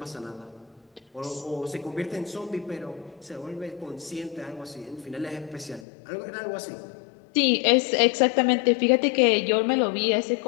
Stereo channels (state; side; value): drops out; right; at 5.9 s